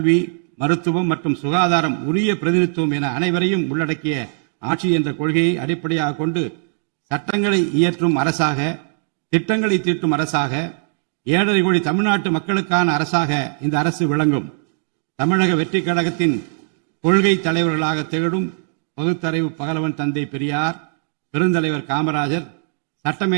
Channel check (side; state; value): left; silent; 66 dB below the other